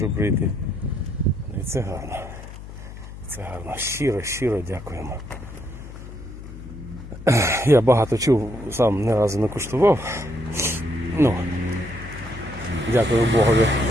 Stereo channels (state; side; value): noise; left; hum, 13 dB below the sound